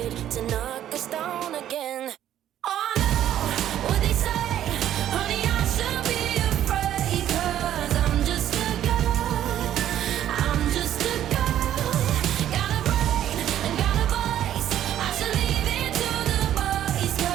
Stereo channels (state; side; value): quieter; left; 11.5 dB